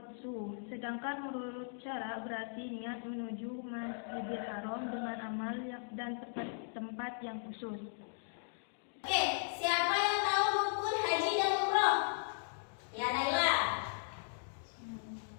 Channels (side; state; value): right; silent; digital silence